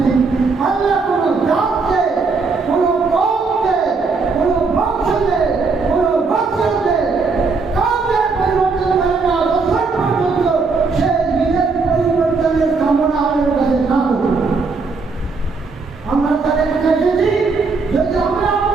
আল্লাহ কোনো জাতকে কোনো কওমকে কোনো বংশকে কোনো গোত্রকে কাউকে পরিবর্তন করে না যতক্ষণ পর্যন্ত সে নিজের পরিবর্তনের কামনা আমাদের কাছে না করবে আমরা তাদের কাছে এসেছি যদি আমরা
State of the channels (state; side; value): quieter; left; 4.4 dB